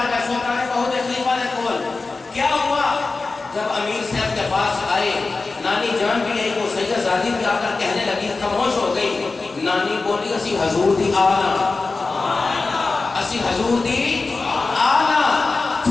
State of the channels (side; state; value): right; quieter; 3.8 dB